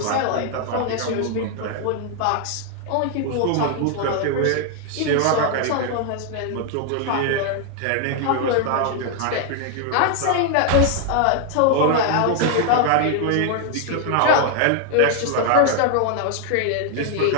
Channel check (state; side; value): different; both; correlation 0.00